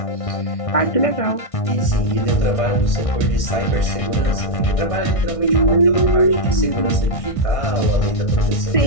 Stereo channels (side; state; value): right; late; 1.6 ms